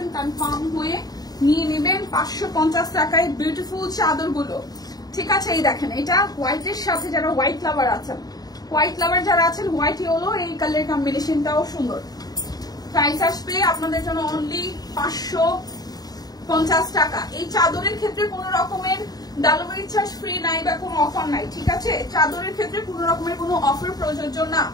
কনফার্ম হয়ে নিয়ে নেবেন। 550 টাকায় বিউটিফুল চাদরগুলো। ঠিক আছে, এই দেখেন, এটা হোয়াইটের সাথে যারা হোয়াইট লাভার আছেন, হোয়াইট ইয়েলো, এই কালার কম্বিনেশনটাও সুন্দর। প্রাইস আসবে আপনাদের জন্য অনলি 550 টাকা। এই চাদরের ক্ষেত্রে কোনো রকমের ডেলিভারি চার্জ ফ্রি নাই বা কোনো অফার নাই। ঠিক আছে, চাদরের ক্ষেত্রে কোনো রকমের কোনো অফার প্রযোজ্য না।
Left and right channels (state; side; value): late; right; 0.19 ms